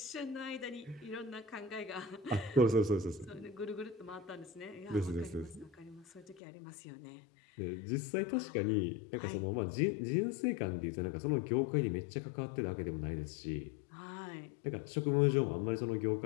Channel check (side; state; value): right; drops out; at 6.4 s